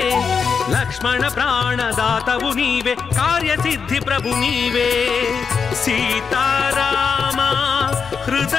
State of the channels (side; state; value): right; quieter; 5.9 dB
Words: లక్ష్మణ ప్రాణదాతవు నీవే కార్యసిద్ధి ప్రభు నీవే సీతారామ